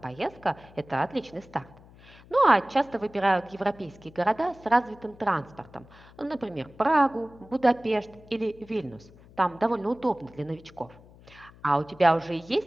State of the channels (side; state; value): left; noise; hum, 23 dB below the sound